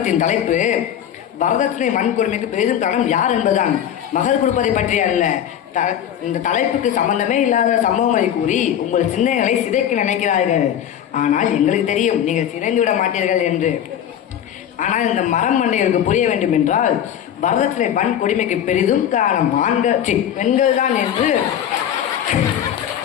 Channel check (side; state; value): right; quieter; 10.0 dB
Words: தலைப்பு வரதட்சணை வன்கொடுமைக்கு பெரிதும் காரணம் யார் என்பதுதான், மகர் கொடுப்பதை பற்றி அல்ல. இந்த தலைப்புக்கு சம்பந்தமே இல்லாத சம்பவங்களை கூறி உங்கள் சிந்தனைகளை சிதைக்க நினைக்கிறார்கள். ஆனால் எங்களுக்கு தெரியும் நீங்கள் சிதைந்து விட மாட்டீர்கள் என்று. ஆனால் இந்த மரம் மண்டைகளுக்கு புரிய வேண்டும் என்றால் வரதட்சணை வன்கொடுமைக்கு பெரிதும் காரணம் பெண்கள் தான் என்று